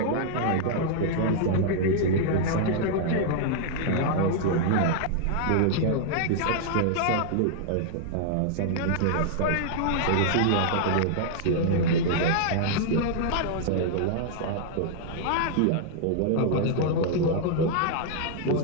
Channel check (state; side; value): different; both; correlation -0.01